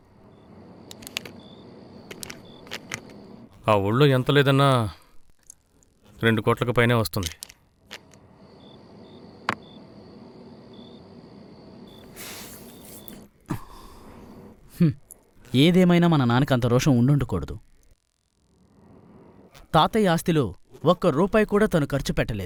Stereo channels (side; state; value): both; identical; correlation 1.00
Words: ఆ ఊళ్ళో ఎంత లేదన్నా 2 కోట్లకు పైనే వస్తుంది. ఏదేమైనా మన నాన్నకి అంత రోషం ఉండుండకూడదు. తాతయ్య ఆస్తిలో ₹1 కూడా తను ఖర్చు